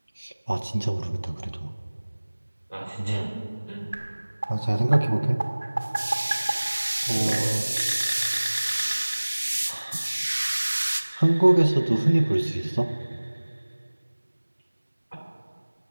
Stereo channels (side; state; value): both; inverted; correlation -1.00